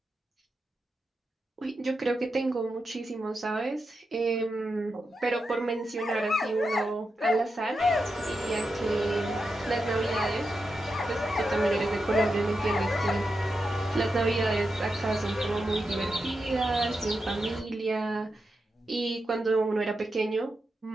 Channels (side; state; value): both; normal; correlation 0.88